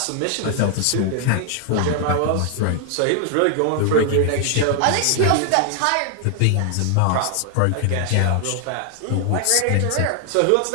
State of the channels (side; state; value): both; different; correlation 0.00